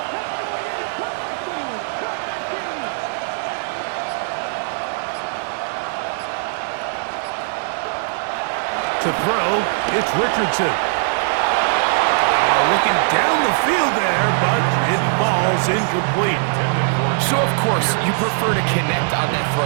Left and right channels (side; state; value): left; silent; 64 dB below the other